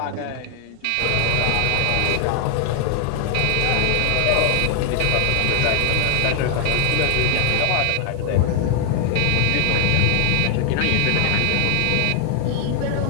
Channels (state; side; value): different; both; correlation 0.00